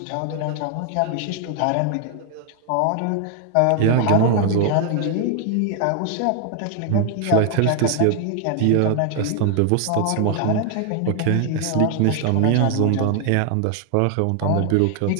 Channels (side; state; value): both; different; correlation 0.00